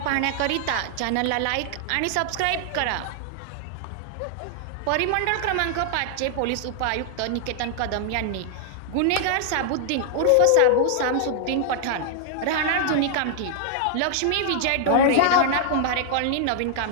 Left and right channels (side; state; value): both; different; correlation 0.00